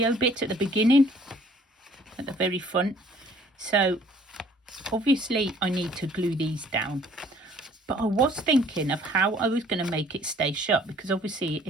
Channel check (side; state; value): both; normal; correlation 0.57